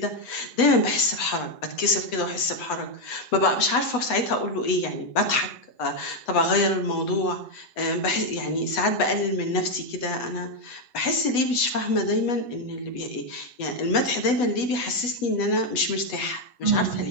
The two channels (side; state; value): right; late; 8.1 ms